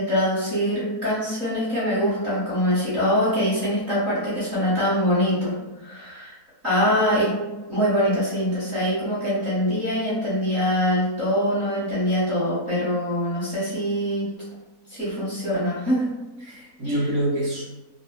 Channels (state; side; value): late; left; 4.0 ms